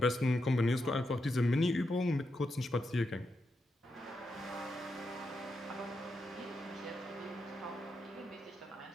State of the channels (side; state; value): both; normal; correlation 0.84